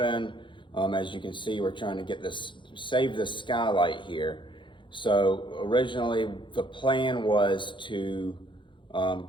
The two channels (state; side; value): late; right; 0.23 ms